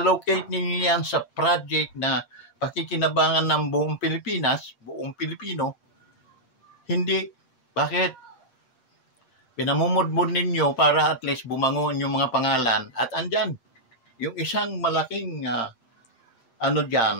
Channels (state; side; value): late; right; 7.7 ms